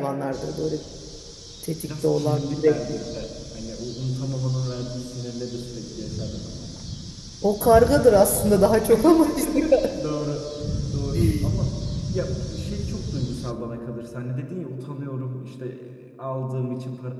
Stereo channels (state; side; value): identical; both; correlation 1.00